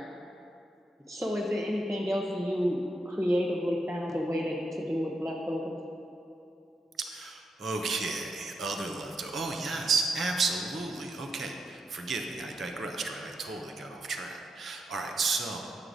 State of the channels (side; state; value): both; normal; correlation 0.83